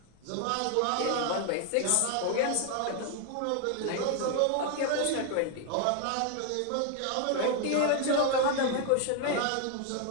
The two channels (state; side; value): different; both; correlation 0.00